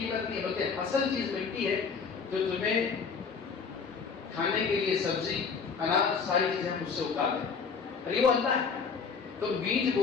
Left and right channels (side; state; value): right; quieter; 5.5 dB